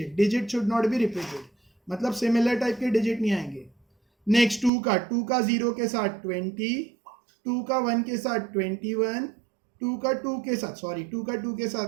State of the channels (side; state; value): left; drops out; at 4.7 s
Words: digit should not be repeated, मतलब सिमिलर टाइप के डिजिट नहीं आएंगे। नेक्स्ट 2 का 0 के साथ 20, 2 का 1 के साथ 21, 2 का 2 के साथ, सॉरी 2 का 2 के